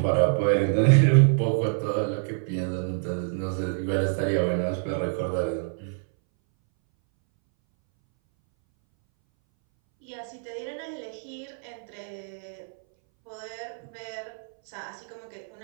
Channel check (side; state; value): left; silent; 60 dB below the other